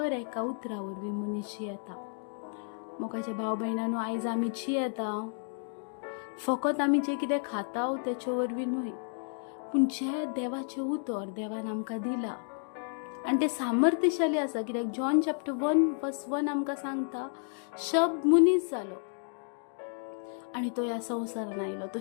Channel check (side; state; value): right; silent; 56 dB below the other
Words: एका उतरा वरवीं मनीस जियेता. मोगाच्या भाव भयणांनो, आयज आमी जियेता फकत आमी जें कितें खाता तेचे वरवीं न्हय, पूण जें देवाचें उतर देवान आमकां दिला आनी तें सामर्थ्यशाली आसा. कित्याक जॉन चॅप्टर 1:1 आमकां सांगता, शब्द मनीस जालो आनी तो ह्या संवसारान आयलो. तो